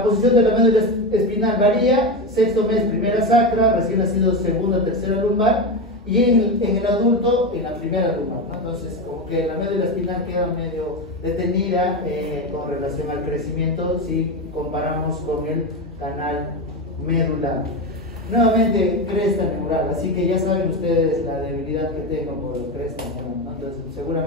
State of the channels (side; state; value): right; noise; hum, 25 dB below the sound